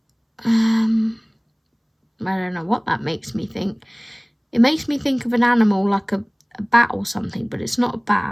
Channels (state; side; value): identical; both; correlation 1.00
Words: I don't know what that makes me think. It makes me think of an animal like a bat or something, but it's not a